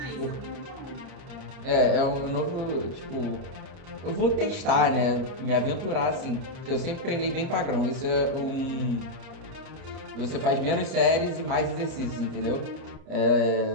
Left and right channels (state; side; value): late; left; 30 ms